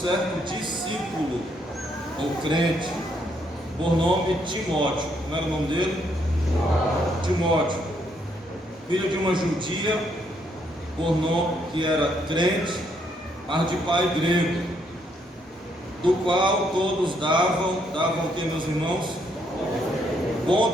discípulo, ou crente, por nome Timóteo. Como era o nome dele? Timóteo, filho de uma judia, por nome que era crente, mas de pai grego, do qual todos davam o que, meus irmãos? Bom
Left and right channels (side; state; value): both; normal; correlation 0.73